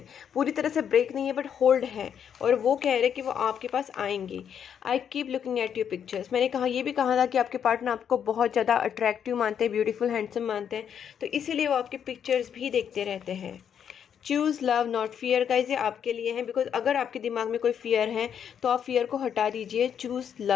पूरी तरह से ब्रेक नहीं है बट होल्ड है, और वो कह रहे कि वो आपके पास आएंगी। I keep looking at your pictures. मैंने कहा, ये भी कहा था कि आपके पार्टनर आपको बहुत ज़्यादा अट्रैक्टिव मानते हैं, ब्यूटीफुल हैंडसम मानते हैं, तो इसीलिए वो आपके पिक्चर्स भी देखते रहते हैं। Choose love not fear. Guys ये आपके लिए है, बिकॉज अगर आपके दिमाग में कोई फियर है तो आप फियर को हटा दीजिए। चूज़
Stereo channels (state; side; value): quieter; right; 8.3 dB